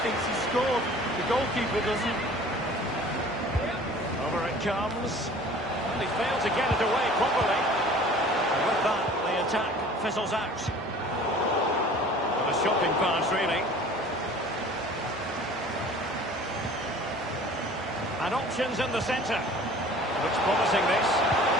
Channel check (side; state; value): both; normal; correlation 0.47